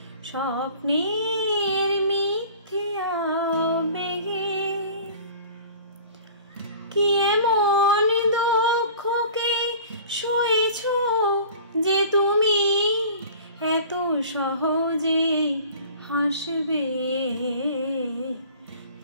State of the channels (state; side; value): inverted; both; correlation -0.44